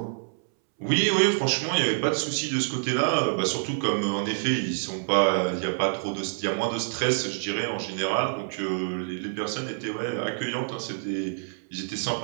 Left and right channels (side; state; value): left; silent; 60 dB below the other